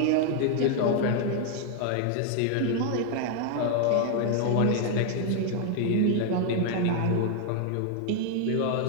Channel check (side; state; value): both; different; correlation 0.00